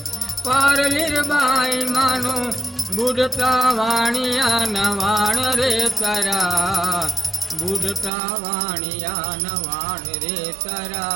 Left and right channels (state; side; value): drops out; left; at 8.1 s